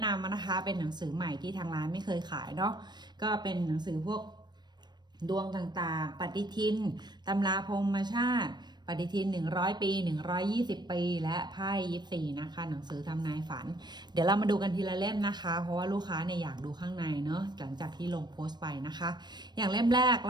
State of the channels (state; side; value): late; left; 0.21 ms